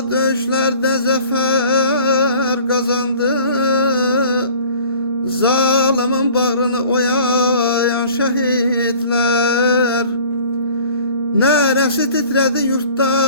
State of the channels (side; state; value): both; inverted; correlation -0.48